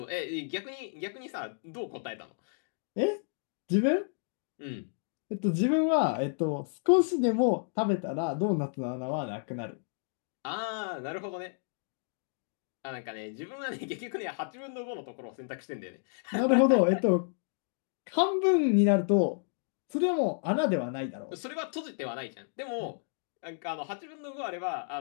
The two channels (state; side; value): silent; right; digital silence